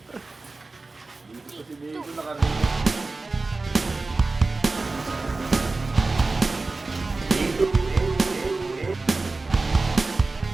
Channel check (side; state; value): left; quieter; 3.5 dB